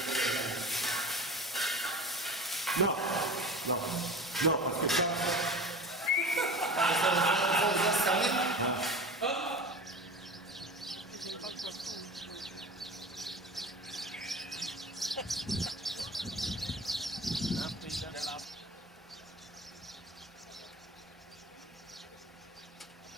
Non, parce que ça... Hein?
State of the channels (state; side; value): normal; both; correlation 0.34